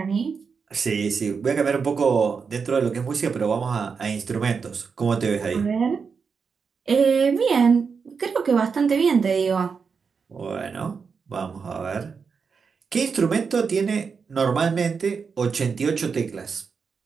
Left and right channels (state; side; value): quieter; left; 5.6 dB